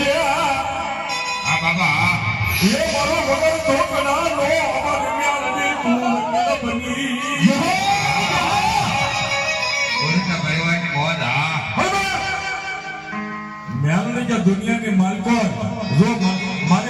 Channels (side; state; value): both; identical; correlation 1.00